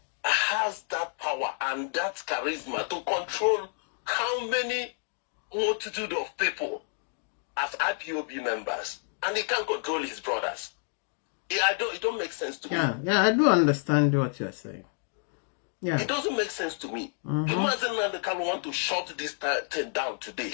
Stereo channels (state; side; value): silent; right; 56 dB below the other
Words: has that power and that charisma to control how many multitude of people as IPOB members, and he can't control his brothers. It don't make sense to me. Yeah, I do understand what you're saying. Yeah, it doesn't make sense to me. If Mazi Nnamdi Kanu want to shut this thing down today,